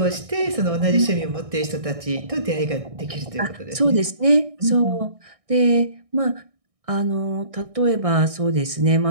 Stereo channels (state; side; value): late; left; 1.6 ms